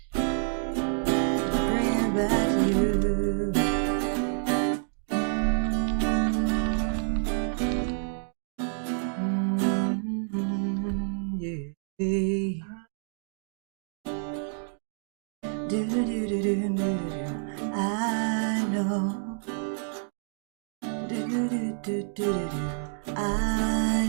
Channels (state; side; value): silent; left; 59 dB below the other